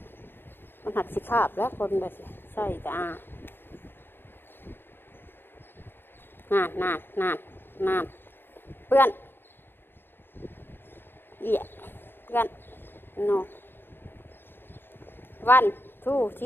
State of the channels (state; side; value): late; right; 0.10 ms